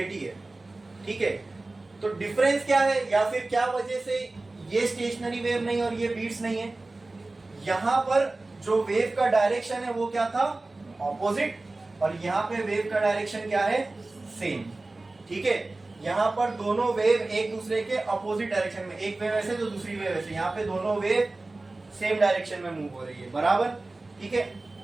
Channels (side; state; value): left; quieter; 3.1 dB